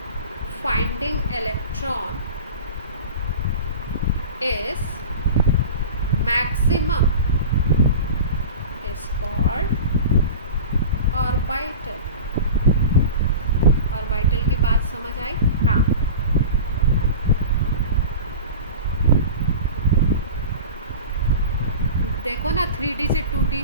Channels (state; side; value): inverted; both; correlation -0.33